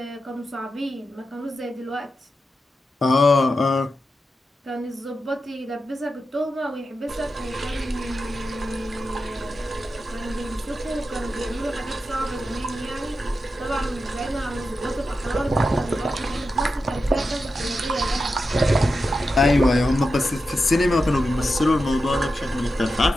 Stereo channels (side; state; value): both; normal; correlation 0.90